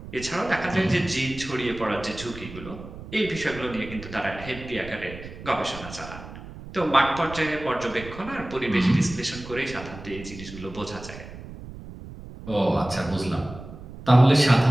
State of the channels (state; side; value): noise; right; rumble, 14 dB below the sound